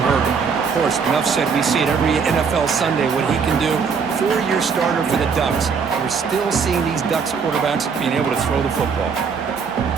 Herbert, of course, enough said, we see it every NFL Sunday what he can do. 4-year starter for the Ducks. We're still seeing these Ducks quarterbacks being able to throw the football.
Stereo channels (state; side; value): quieter; left; 5.8 dB